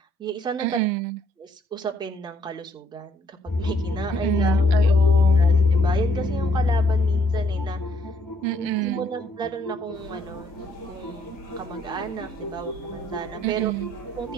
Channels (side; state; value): both; normal; correlation 0.68